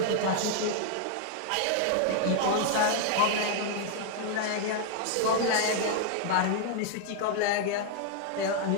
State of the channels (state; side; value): different; both; correlation 0.00